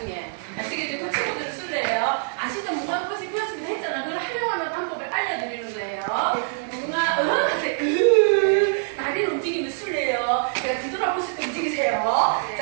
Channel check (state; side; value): silent; left; 62 dB below the other